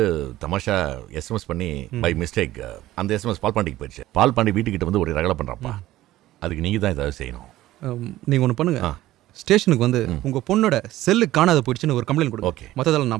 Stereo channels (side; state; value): left; quieter; 15.4 dB